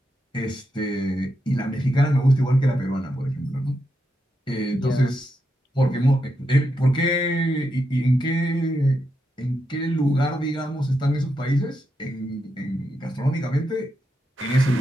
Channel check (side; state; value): both; normal; correlation 0.84